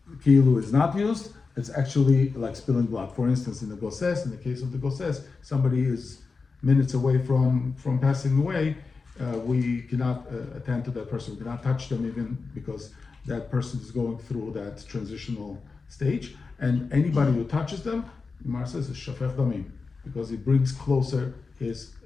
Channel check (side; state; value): right; quieter; 4.5 dB